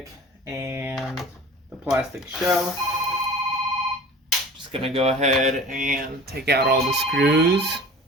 and the plastic shell. Just gonna go ahead and take out all the screws.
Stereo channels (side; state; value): both; normal; correlation 0.41